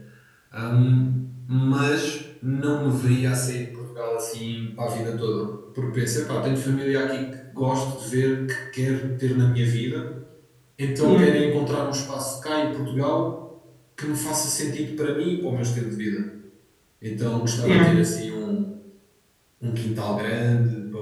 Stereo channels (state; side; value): identical; both; correlation 1.00